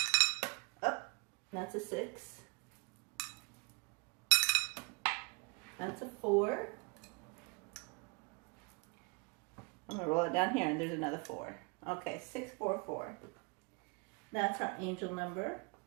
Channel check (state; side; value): quieter; left; 31.6 dB